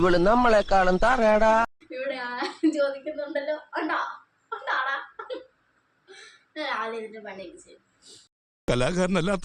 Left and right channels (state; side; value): identical; both; correlation 1.00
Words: നമ്മളെക്കാളും തറയടാ. ഇവിടെ ആരും ചോദിക്കുന്നുണ്ടല്ലോ, ഉണ്ടാടാ. രാവിലെ ഇതിന്റെ പണിയൊക്കെ ചെയ്യും.